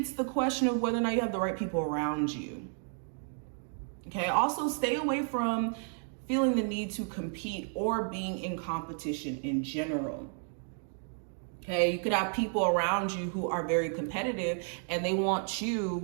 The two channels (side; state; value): left; silent; 56 dB below the other